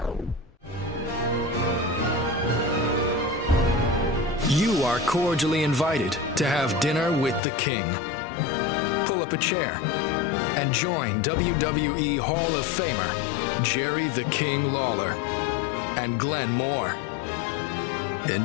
You are cordially invited to have dinner with the King. Pull up a chair and join WWE Hall of Famer Jerry the King Lawler and Glenn Moore.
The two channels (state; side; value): drops out; right; at 7.4 s